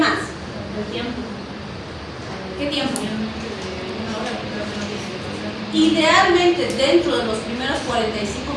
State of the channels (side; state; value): both; identical; correlation 1.00